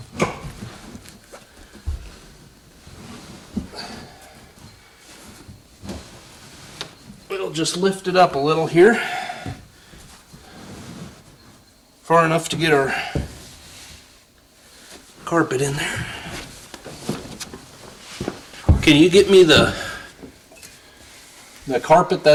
We'll just lift it up a little here. far enough to get our carpet in there. Can you get me the carpet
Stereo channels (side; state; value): both; identical; correlation 1.00